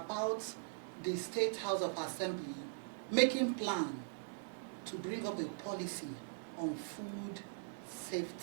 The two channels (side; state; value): left; silent; 51 dB below the other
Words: the State House of Assembly making plan to bring up a policy on food